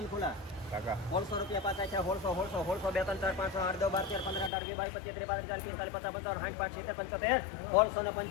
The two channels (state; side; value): drops out; right; at 4.5 s